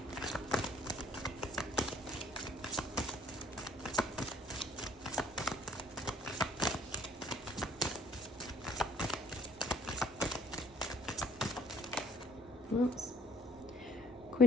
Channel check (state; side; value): normal; both; correlation 0.60